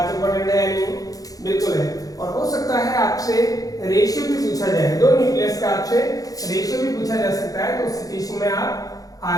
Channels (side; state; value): right; late; 0.17 ms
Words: इंपॉर्टेंट है या नहीं, बिल्कुल है। और हो सकता है आपसे रेशियो भी पूछा जाए, दो न्यूक्लियस का आपसे रेशियो भी पूछा जा सकता है। तो उस सिचुएशन में आप